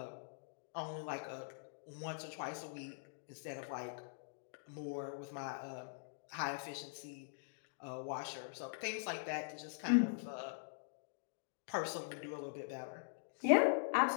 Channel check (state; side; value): silent; right; digital silence